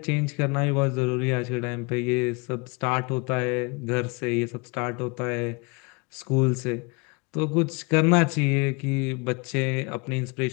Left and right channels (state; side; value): quieter; right; 29.8 dB